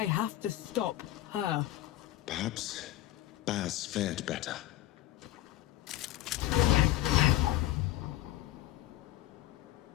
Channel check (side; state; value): right; quieter; 14.7 dB